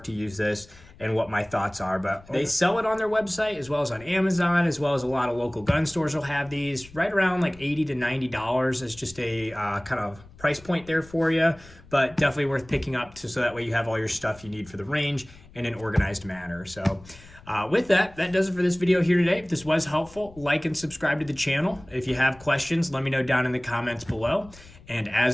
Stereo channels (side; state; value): left; noise; rumble, 22 dB below the sound